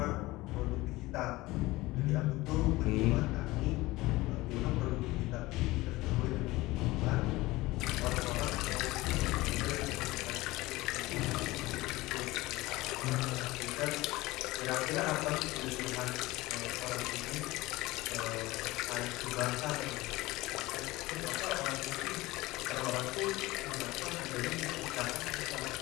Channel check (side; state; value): right; quieter; 19.6 dB